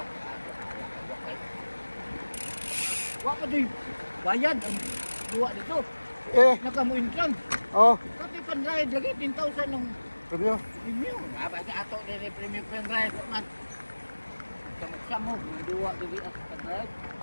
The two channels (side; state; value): both; inverted; correlation -1.00